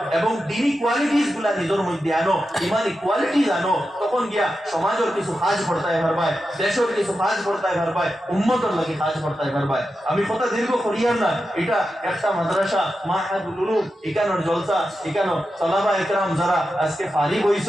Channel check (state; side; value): normal; both; correlation 0.90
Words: এবং দিনী কোয়ালিটিস গুলা নিজের মধ্যে আনো, ইমানি কোয়ালিটিস আনো। তখন গিয়া সমাজের কিছু কাজ করতাই পারবাই, দেশের কিছু কাজ করতাই পারবাই, উম্মতের লাগে কাজ করতাই পারবাই। আমি কথা দীর্ঘ করিয়ার না, এটা একটা মাদ্রাসা মাহাদুল উলুম, এখানোর জলসা, এখানো সালাবা একরাম যারা আজকে ফারিগ